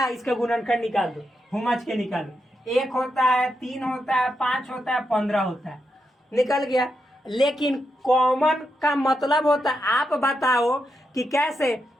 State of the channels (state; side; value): normal; both; correlation 0.84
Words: इसका गुणनखंड निकाल दो, हुमच के निकालो। 1 होता है, 3 होता है, 5 होता है, 15 होता है, निकल गया। लेकिन कॉमन का मतलब होता है, आप बताओ कि कैसे।